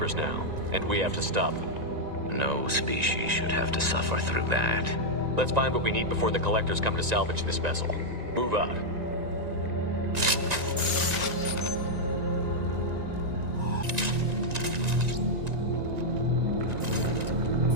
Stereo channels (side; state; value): left; late; 1.9 ms